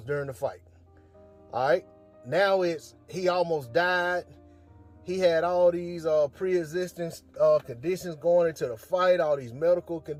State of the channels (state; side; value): identical; both; correlation 1.00